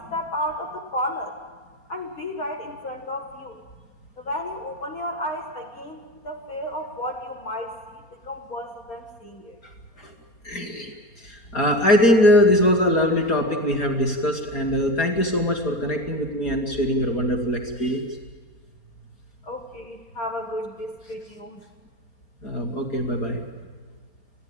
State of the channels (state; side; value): late; right; 4.3 ms